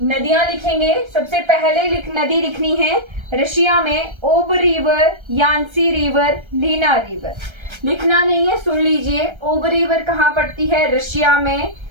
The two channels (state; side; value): late; left; 1.3 ms